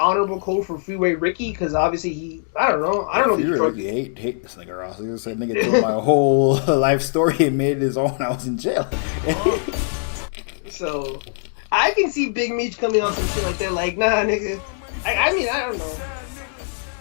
code for Freeway Ricky? Because obviously I don't know. Freeway Ricky hate this nigga Ross. He said nigga told my whole life story and made it his own. I was in jail. So I can see Big Meech coming on some shit like that. Like, nah, nigga. I mean, I don't know.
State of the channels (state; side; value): silent; right; digital silence